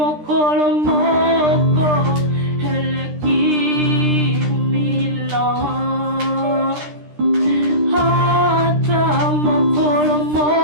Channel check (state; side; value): late; left; 13 ms